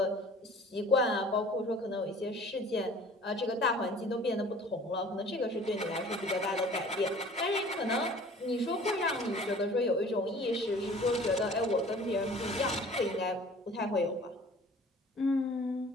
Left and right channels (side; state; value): both; normal; correlation 0.48